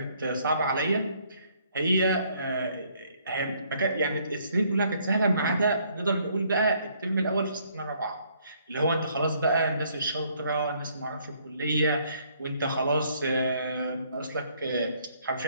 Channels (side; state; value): both; inverted; correlation -0.66